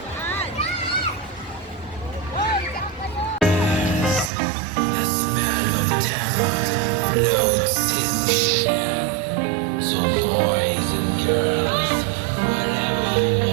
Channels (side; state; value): left; drops out; at 4.3 s